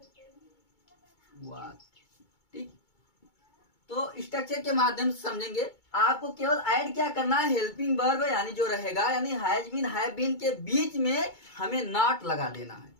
वाक्य। ठीक, तो स्ट्रक्चर के माध्यम से समझेंगे। आपको केवल ऐड क्या करना है? हेल्पिंग वर्ब, यानी जो रहेगा, यानी हैज बीन हैव बीन के बीच में हमें नॉट लगा देना है।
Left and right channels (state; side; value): late; right; 2.2 ms